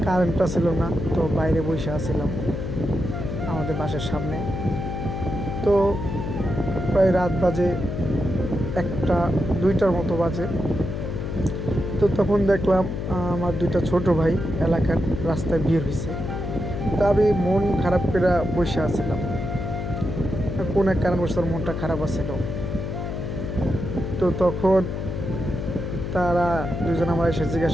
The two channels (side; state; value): left; noise; hum, 4 dB below the sound